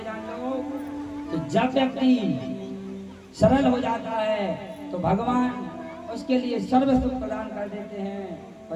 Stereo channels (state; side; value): identical; both; correlation 1.00